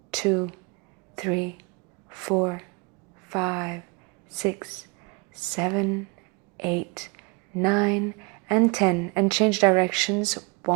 2, 3, 4, 5, 6, 7, 8, 9, and 10. And change directions.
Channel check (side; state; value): left; quieter; 28.9 dB